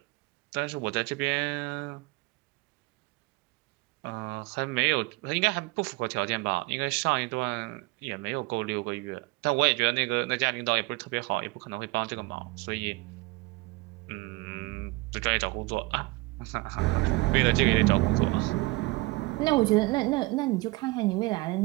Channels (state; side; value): quieter; left; 23.2 dB